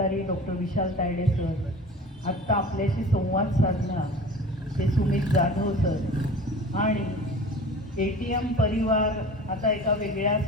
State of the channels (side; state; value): both; normal; correlation 0.39